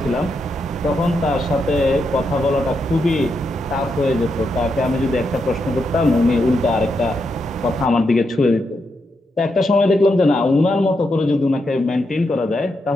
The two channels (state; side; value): normal; both; correlation 0.83